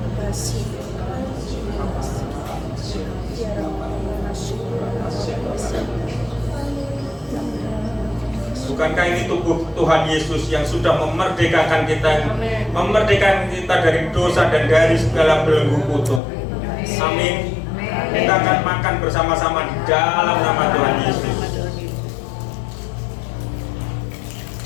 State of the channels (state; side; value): drops out; right; at 16.2 s